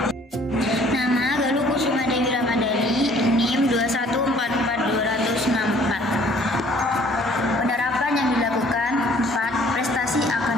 Nama Galuh Kusuma Dewi Ramadhani, NIM 2144264. Penerapan yang dilakukan. 4. Prestasi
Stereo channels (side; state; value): both; normal; correlation 0.57